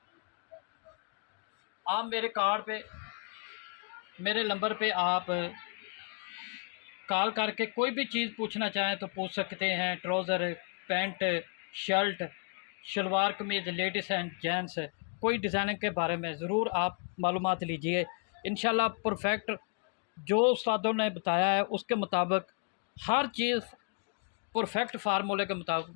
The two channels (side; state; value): right; quieter; 37.8 dB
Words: आप मेरे कार्ड पे, मेरे नंबर पे आप कॉल करके कोई भी चीज़ पूछना चाहें तो पूछ सकते हैं। Trouser, pant, shirt, salwar kameez, ladies and gents, कोई डिज़ाइनिंग के बारे में ज़रूर आप मालूमात लीजिए। इंशाल्लाह परफेक्ट जो उस्तादों ने बताया है उसके मुताबिक हर चीज़ परफेक्ट फार्मूले के मुताबिक